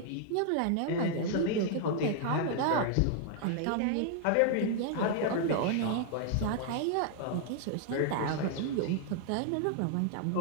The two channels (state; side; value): different; both; correlation -0.01